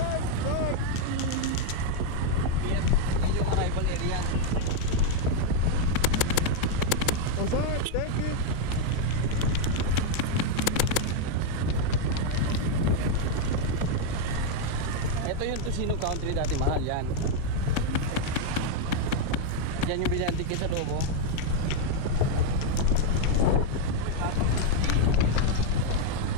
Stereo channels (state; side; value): different; both; correlation 0.01